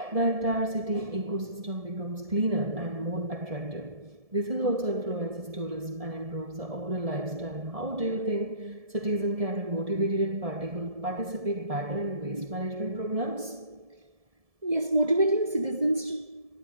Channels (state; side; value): late; left; 1.7 ms